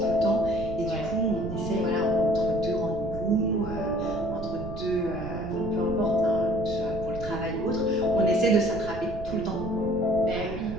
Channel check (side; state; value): right; noise; rumble, 10 dB below the sound